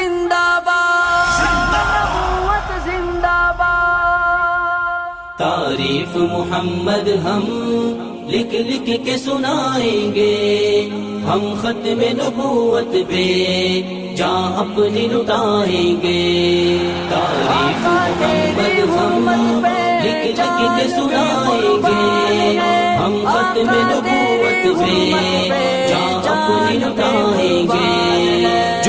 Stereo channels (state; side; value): identical; both; correlation 1.00